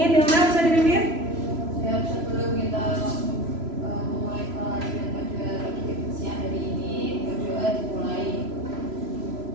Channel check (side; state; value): left; late; 3.0 ms